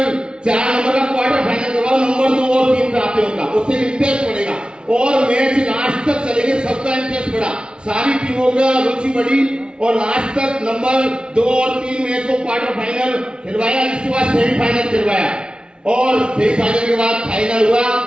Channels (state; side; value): late; left; 0.055 ms